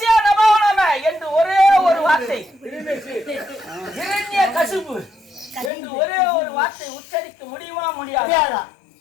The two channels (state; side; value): drops out; right; at 5.7 s